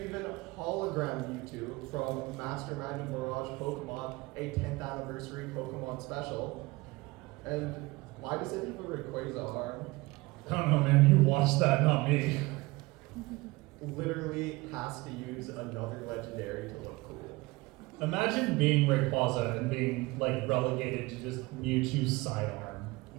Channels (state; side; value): quieter; left; 22.4 dB